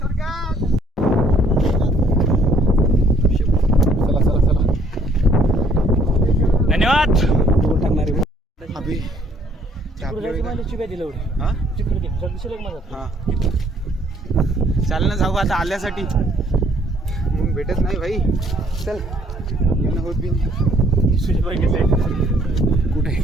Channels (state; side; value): normal; both; correlation 0.63